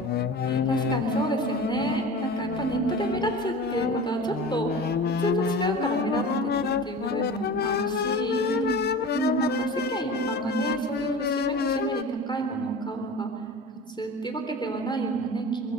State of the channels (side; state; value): both; normal; correlation 0.35